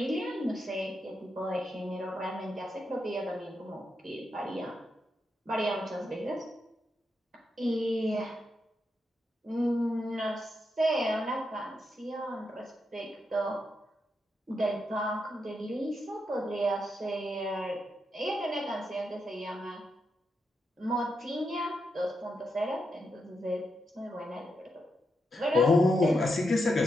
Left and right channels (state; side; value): normal; both; correlation 0.84